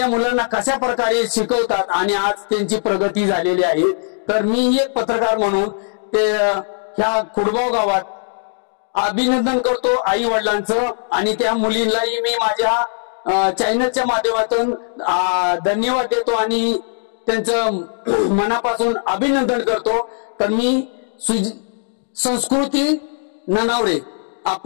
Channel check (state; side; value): silent; right; digital silence